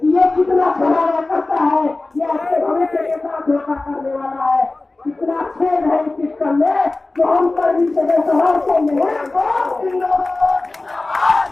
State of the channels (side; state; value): right; quieter; 3.2 dB